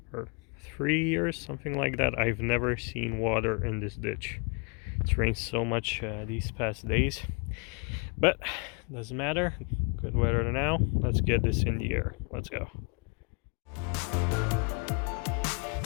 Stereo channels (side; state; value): right; quieter; 35.5 dB